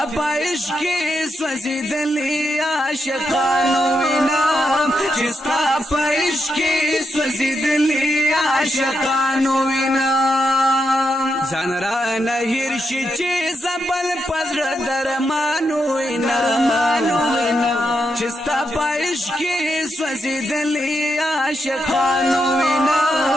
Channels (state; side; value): normal; both; correlation 0.83